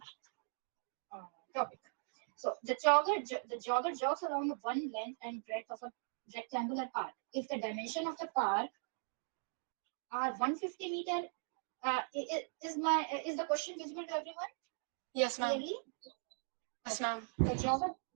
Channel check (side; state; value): left; silent; digital silence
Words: topic. So the jogger jogs along one length and breadth of a rectangular park. If the dimension of the park are 150 meter, is the question visible to everyone? Yes, ma'am. Clearly? Yes, ma'am.